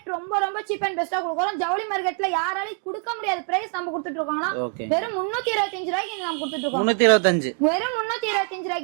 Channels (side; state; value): left; quieter; 39.5 dB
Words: ரொம்ப ரொம்ப சீப் அண்ட் பெஸ்டா கொடுக்குறோம். ஜவுளி மார்க்கெட்ல யாராலையும் கொடுக்க முடியாத பிரைஸ் நம்ம கொடுத்துட்டு இருக்கோங்கண்ணா. வெறும் 325 ரூபாய்க்கு நம்ம கொடுத்துட்டு இருக்கோம். 325. வெறும் 325